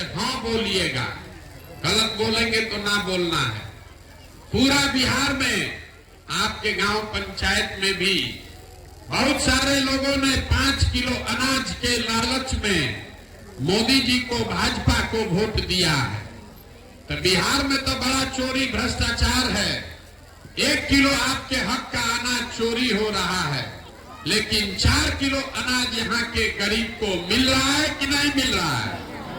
हाँ बोलिएगा, गलत बोलेंगे तो ना बोलना है। पूरा बिहार में, आपके गांव पंचायत में भी बहुत सारे लोगों ने 5 किलो अनाज के लालच में मोदी जी को, भाजपा को वोट दिया है। तो बिहार में तो बड़ा चोरी भ्रष्टाचार है। 1 किलो आपके हक का अनाज चोरी हो रहा है, लेकिन 4 किलो अनाज यहाँ के गरीब को मिल रहा है कि नहीं मिल रहा है?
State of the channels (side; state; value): both; identical; correlation 1.00